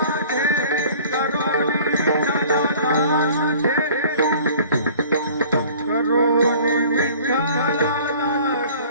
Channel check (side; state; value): both; inverted; correlation -0.49